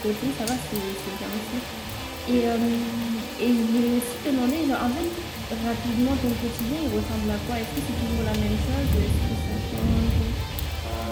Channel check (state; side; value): identical; both; correlation 1.00